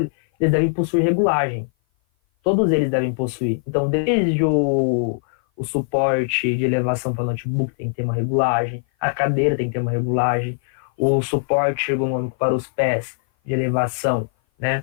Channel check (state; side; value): silent; right; 56 dB below the other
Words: eles devem possuir regulagem. Todos eles devem possuir. Então, desde o suporte de elevação para notebook tem que ter uma regulagem, a cadeira tem que ter uma regulagem, o suporte ergonômico para os pés de elevação,